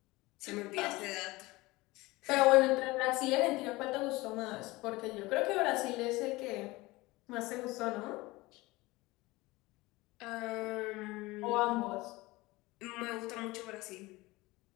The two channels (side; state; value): right; quieter; 21.1 dB